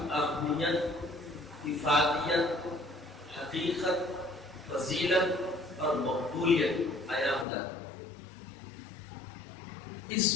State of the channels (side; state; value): right; drops out; at 7.5 s